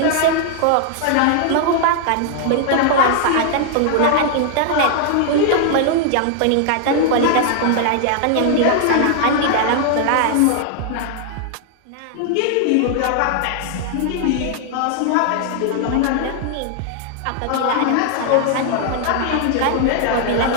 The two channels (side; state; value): both; different; correlation 0.00